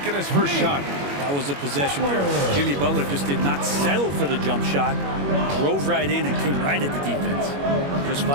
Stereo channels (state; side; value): late; left; 21 ms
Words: his first shot. That was a possession where Jimmy Butler just did not settle for the jump shot. Drove right in and came right at the defense. Just